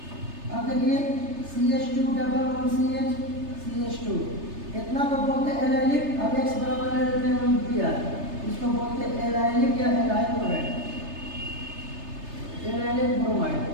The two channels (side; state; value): left; late; 3.3 ms